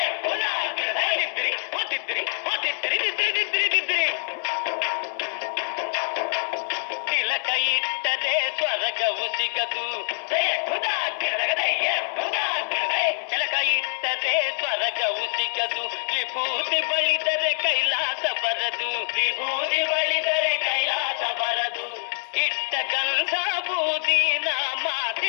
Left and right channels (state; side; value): silent; right; digital silence